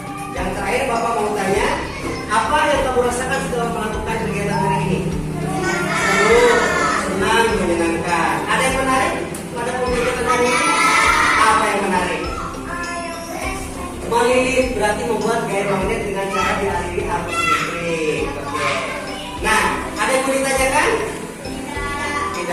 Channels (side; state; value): both; identical; correlation 1.00